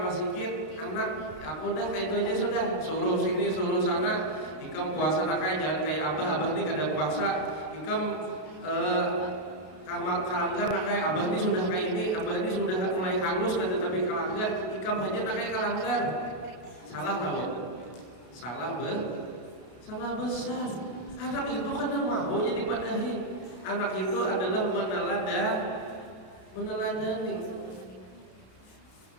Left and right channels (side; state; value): right; late; 33 ms